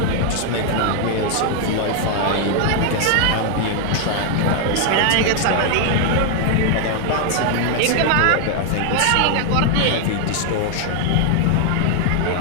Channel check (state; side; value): different; both; correlation 0.00